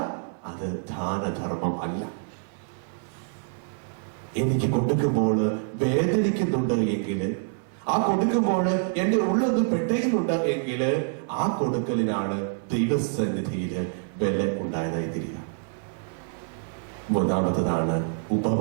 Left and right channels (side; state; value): left; silent; 59 dB below the other